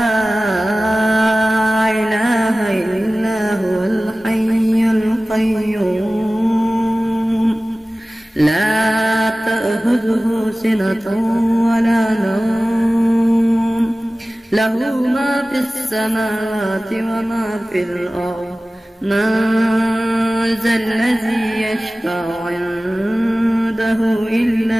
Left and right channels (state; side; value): normal; both; correlation 0.97